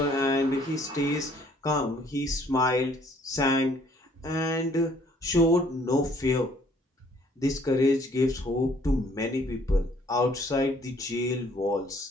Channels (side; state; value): both; normal; correlation 0.61